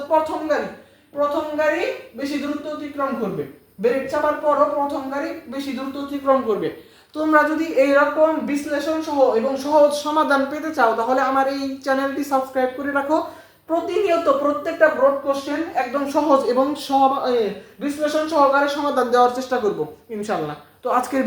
প্রথম গাড়ি বেশি দূরত্ব অতিক্রম করবে। ব্রেক চাপার পরও প্রথম গাড়ি বেশি দূরত্ব অতিক্রম করবে। তোমরা যদি এইরকম বিশ্লেষণ সহ এবং সহজ সমাধান পেতে চাও তাহলে আমার এই চ্যানেলটি সাবস্ক্রাইব করে রাখো। প্রতিনিয়ত প্রত্যেকটা ব্রড কোশ্চেন একদম সহজ এবং বিশ্লেষণ সহকারে সমাধান দেওয়ার চেষ্টা করব ইনশাআল্লাহ। তো আজকের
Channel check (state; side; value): identical; both; correlation 1.00